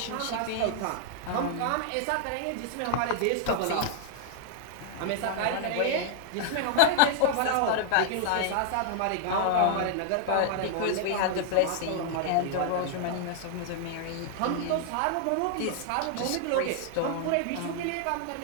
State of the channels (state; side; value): different; both; correlation 0.00